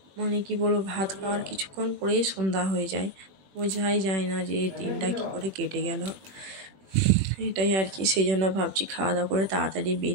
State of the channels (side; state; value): left; late; 21 ms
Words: মানে কি বলবো, ভাত খাওয়ার কিছুক্ষণ পরেই সন্ধ্যা হয়ে যায়, বোঝাই যায় না যে দিনটা কী করে কেটে গেল। এটাই আর কি, সেই জন্য ভাবছি খাওয়া দাওয়া করে তাড়াতাড়ি